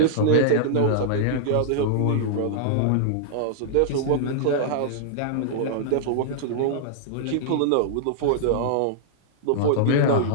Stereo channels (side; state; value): both; different; correlation -0.01